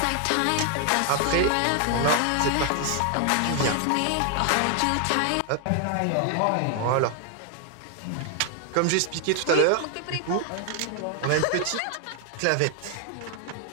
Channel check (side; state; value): both; different; correlation 0.00